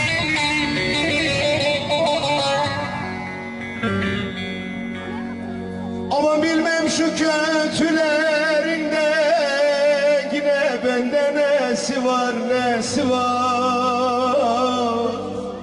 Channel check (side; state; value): both; identical; correlation 1.00